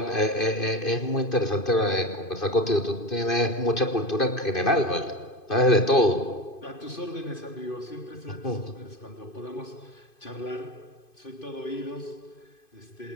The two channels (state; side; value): late; right; 2.5 ms